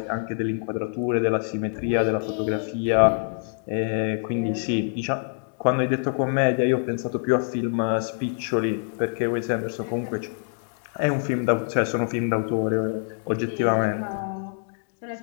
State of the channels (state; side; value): silent; right; digital silence